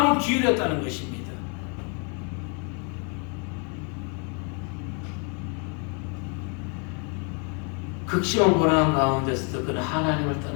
기울였다는 것입니다. 극심한 고난 가운데서도 그는 하나님을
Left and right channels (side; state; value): right; quieter; 36.9 dB